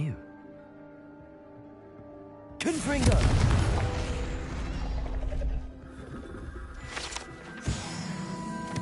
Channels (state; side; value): identical; both; correlation 1.00